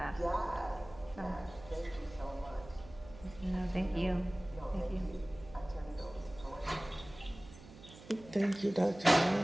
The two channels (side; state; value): right; noise; hum, 18 dB below the sound